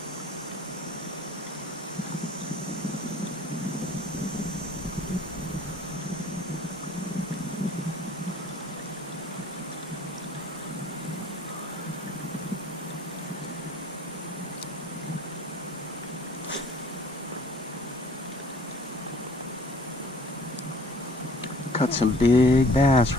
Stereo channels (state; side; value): normal; both; correlation 0.53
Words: Caught some big bass